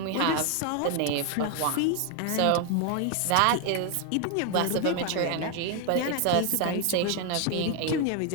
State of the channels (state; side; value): different; both; correlation 0.01